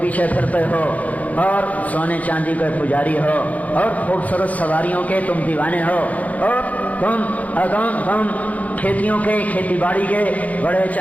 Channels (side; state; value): right; late; 0.073 ms